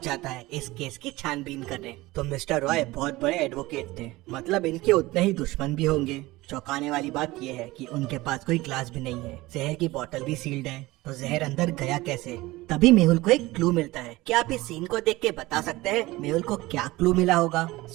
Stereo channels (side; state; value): left; quieter; 19.7 dB